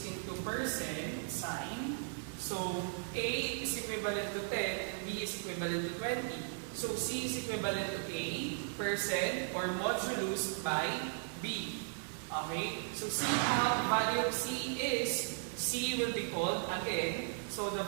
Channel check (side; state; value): left; silent; digital silence